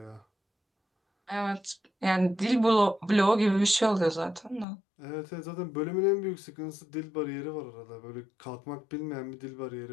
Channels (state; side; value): drops out; right; at 4.7 s